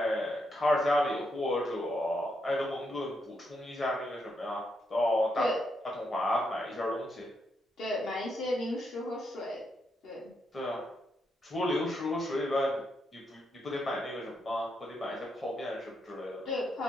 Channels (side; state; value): both; normal; correlation 0.80